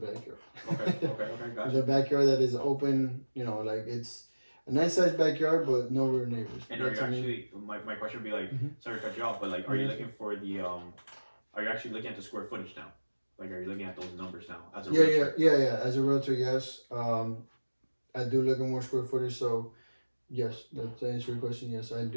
backyard. Okay, gotcha. The backyard that is open, like it's a nice sized backyard, but no rear neighbors. And are you actually, my question would be like, sorry to cut you off, but like, are you looking for the, are you actually looking at the square footage now? Like, are you looking at those numbers now as a realtor? Yeah. As a realtor, yes. I do look at more square footage. So, yes, to answer your question, yes, I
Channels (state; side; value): inverted; both; correlation -1.00